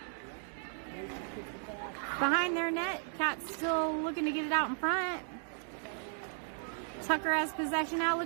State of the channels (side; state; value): left; silent; 54 dB below the other